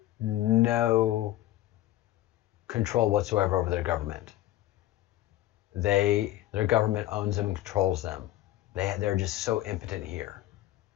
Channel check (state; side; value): quieter; right; 14.8 dB